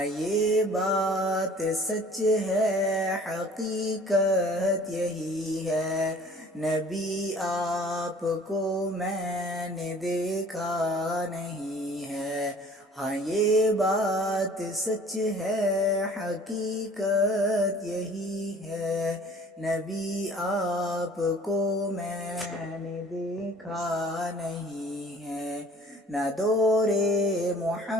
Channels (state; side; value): normal; both; correlation 0.50